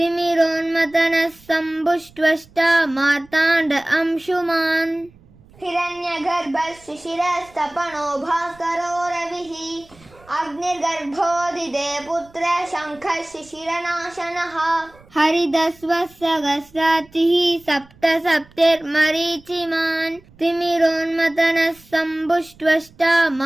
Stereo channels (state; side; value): noise; right; rumble, 27 dB below the sound